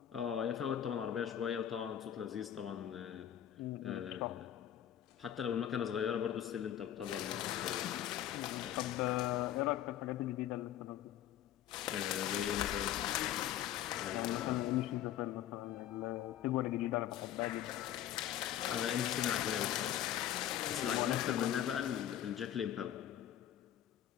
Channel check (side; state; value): right; quieter; 11.3 dB